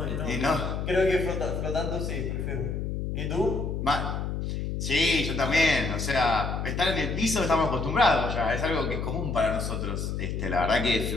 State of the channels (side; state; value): left; noise; hum, 3 dB below the sound